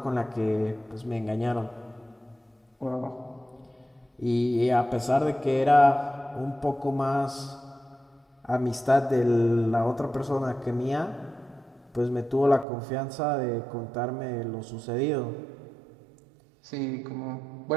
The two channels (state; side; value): drops out; left; at 12.7 s